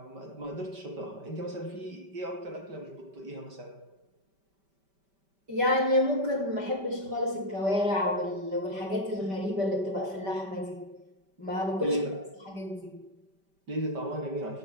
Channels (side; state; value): left; late; 5.1 ms